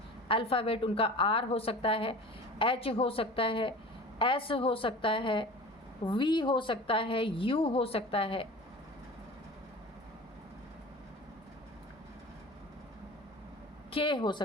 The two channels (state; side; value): normal; both; correlation 0.38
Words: अल्फ़ाबेट उनका आर हो सकता है, एच हो सकता है, एस हो सकता है, वी हो सकता है, यू हो सकता है, के हो